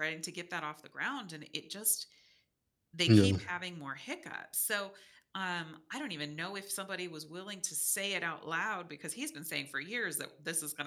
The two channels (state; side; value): identical; both; correlation 1.00